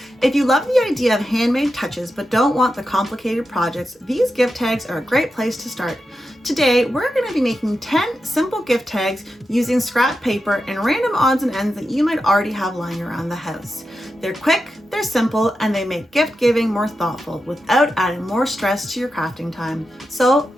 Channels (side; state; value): both; normal; correlation 0.89